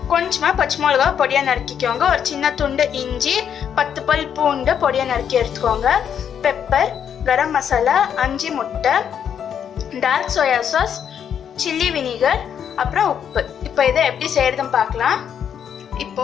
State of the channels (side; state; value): right; quieter; 8.4 dB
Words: கொஞ்சமாக பச்சை மிளகா பொடியாக நறுக்கிக்கோங்க. ஒரு சின்ன துண்டு இஞ்சி, 10 பல் பூண்டு பொடியாக நறுக்கி எடுத்துக்கோங்க. பெப்பர், கரம் மசாலா, 5 முட்டை, dark soya sauce, chilli vinegar, அப்புறம் உப்பு. இப்போ இதை எப்படி செய்யறதுன்னு பார்க்கலாம். இப்போ